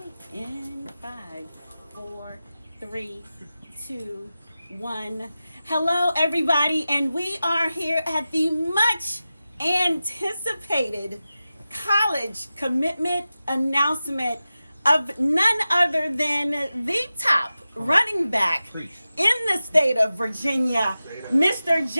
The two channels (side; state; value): both; inverted; correlation -0.94